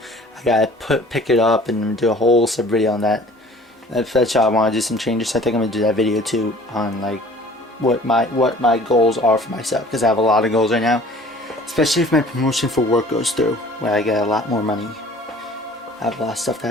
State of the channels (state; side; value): normal; both; correlation 0.49